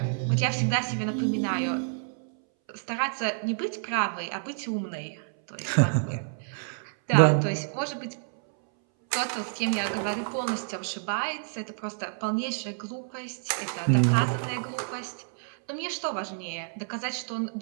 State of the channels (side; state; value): left; silent; 59 dB below the other